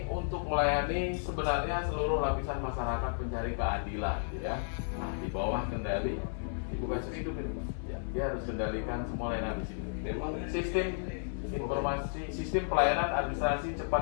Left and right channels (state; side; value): silent; right; 56 dB below the other